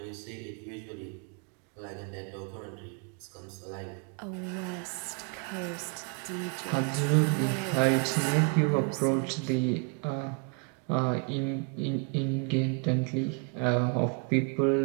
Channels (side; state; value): left; quieter; 36.0 dB